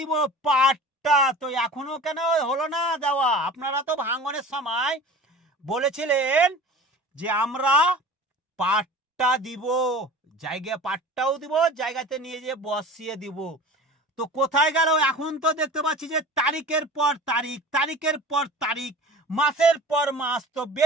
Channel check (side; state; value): both; normal; correlation 0.39